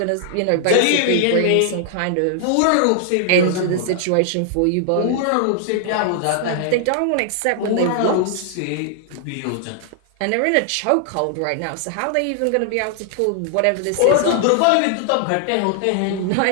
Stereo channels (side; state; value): both; different; correlation 0.00